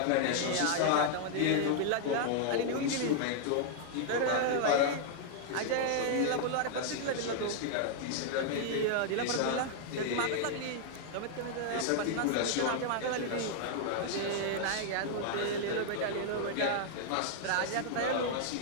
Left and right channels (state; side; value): different; both; correlation -0.01